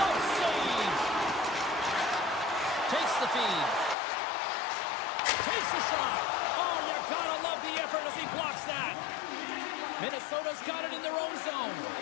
save. Takes the feed. Takes the shot. Oh, you gotta love the effort as he blocks that. Minnesota's got it in their own zone.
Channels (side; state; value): right; drops out; at 4.0 s